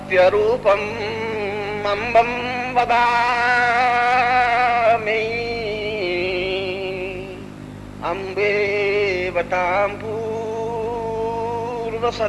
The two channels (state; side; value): identical; both; correlation 1.00